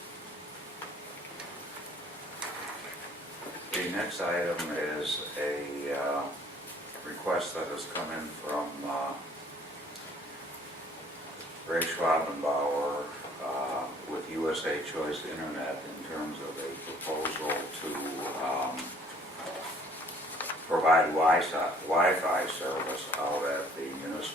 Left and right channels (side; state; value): both; normal; correlation 0.57